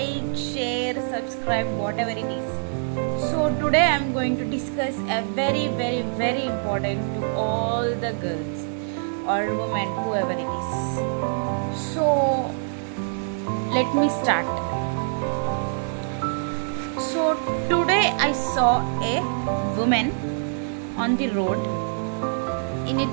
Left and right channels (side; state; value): left; silent; digital silence